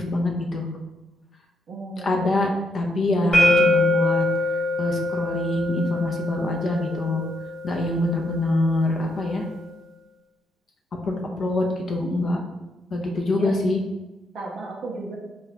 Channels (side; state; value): both; normal; correlation 0.78